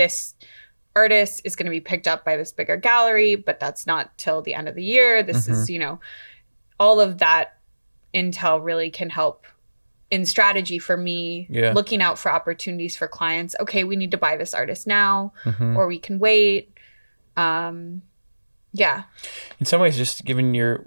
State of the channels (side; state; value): both; inverted; correlation -1.00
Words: artist is going to be picked up by this bigger gallery, but that's not till the end of the year. This is, all of that intel really can help in strategy for me, looking out for opportunities for clients. Okay, we need to buy this artist now, or we can wait. In some ways, just given